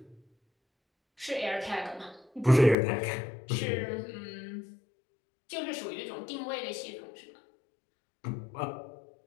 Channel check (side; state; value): right; drops out; at 2.8 s